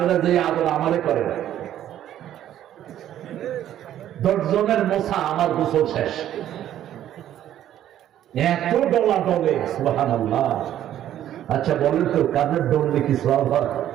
যে আদর আমারে করেন। 10 জনের মোছা আমার গোসল শেষ। এত ডলা ডলে, সুবহানাল্লাহ। আচ্ছা বলেন তো কাদের ডললে কি সওয়াব হয়?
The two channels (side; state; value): left; quieter; 11.6 dB